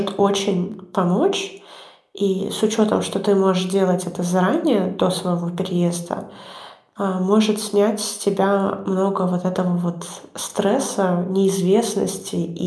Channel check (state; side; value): identical; both; correlation 1.00